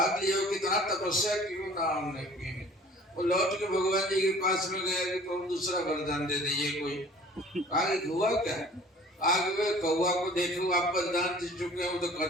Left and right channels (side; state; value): both; normal; correlation 0.49